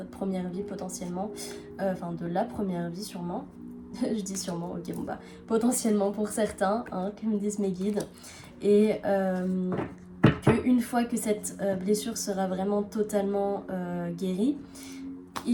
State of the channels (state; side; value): identical; both; correlation 1.00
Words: première vie potentiellement, enfin de la première vie sûrement. Je dis sûrement, ok, bon bah, potentiellement pour certains, hein, comme me disent mes guides. Et qu'une fois que cette blessure sera vraiment totalement guérie,